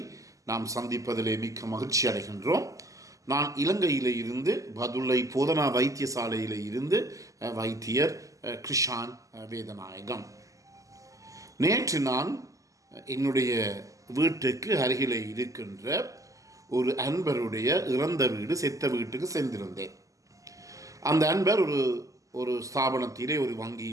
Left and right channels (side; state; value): left; late; 0.16 ms